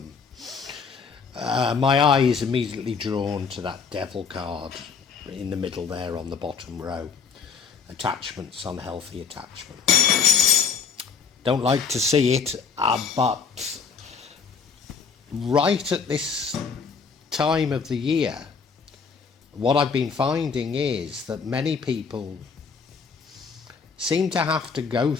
My eye is immediately drawn to that devil card in the middle there on the bottom row. Attachments, unhealthy attachments. Don't like to see it, but right at this time of the year, what I've been finding is that many people seem to have to go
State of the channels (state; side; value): quieter; right; 5.8 dB